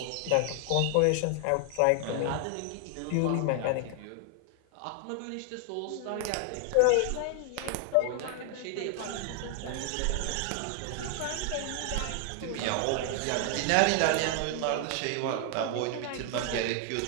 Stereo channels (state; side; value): different; both; correlation 0.00